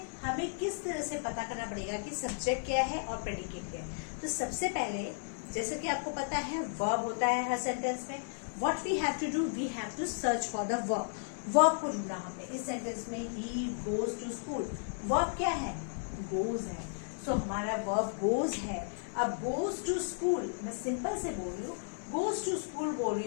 हमें किस तरह से पता करना पड़ेगा कि सब्जेक्ट क्या है और प्रेडिकेट क्या है। तो सबसे पहले, जैसे कि आपको पता है वर्ब होता है हर सेंटेंस में, what we have to do, we have to search for the verb. Verb को ढूंढना हमने इस सेंटेंस में, he goes to school. Verb क्या है? गोज है। सो हमारा वर्ब गोज है। अब गोज टू स्कूल, मैं सिंपल से बोल रही हूँ, गोज टू स्कूल बोल रही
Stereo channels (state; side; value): silent; right; 55 dB below the other